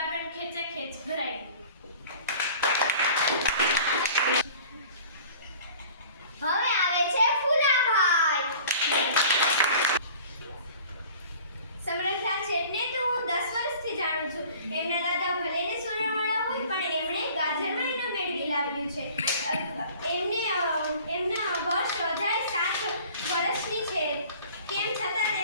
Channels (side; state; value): both; inverted; correlation -0.46